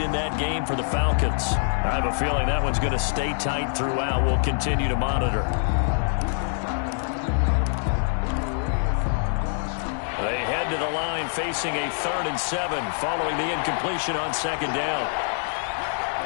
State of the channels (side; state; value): right; silent; digital silence